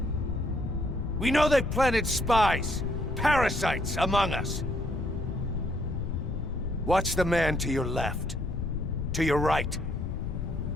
We know they planted spies, parasites among us. Watch the man to your left, to your right.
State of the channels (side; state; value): left; noise; rumble, 3 dB below the sound